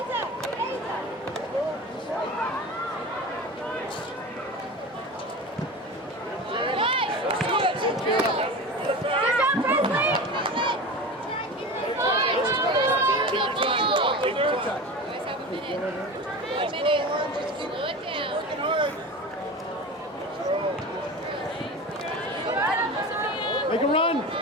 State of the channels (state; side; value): normal; both; correlation 0.31